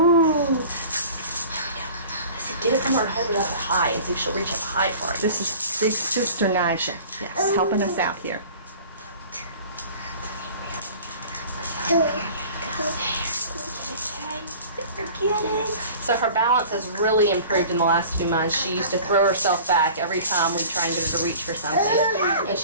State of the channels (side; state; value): both; inverted; correlation -0.44